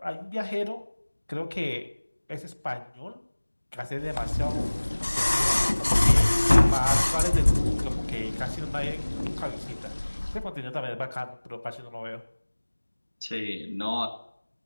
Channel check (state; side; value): inverted; both; correlation -1.00